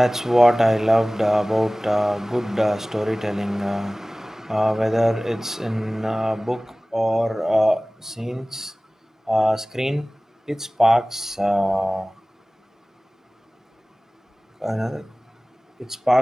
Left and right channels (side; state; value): both; normal; correlation 0.98